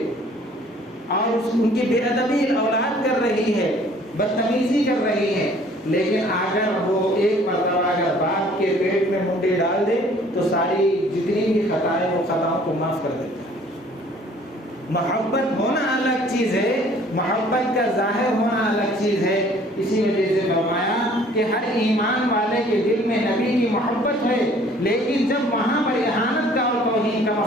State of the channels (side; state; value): both; normal; correlation 0.55